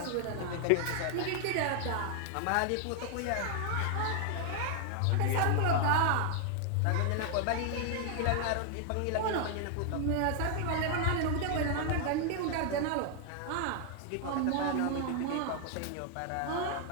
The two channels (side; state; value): both; different; correlation 0.00